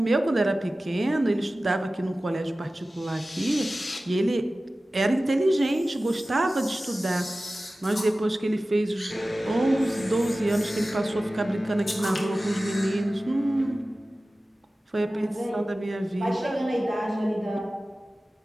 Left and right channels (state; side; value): normal; both; correlation 0.96